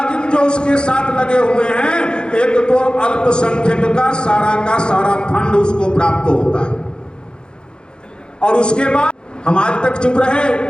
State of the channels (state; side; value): late; right; 0.049 ms